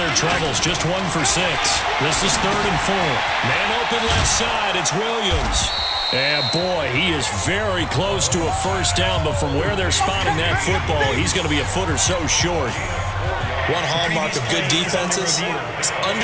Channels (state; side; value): identical; both; correlation 1.00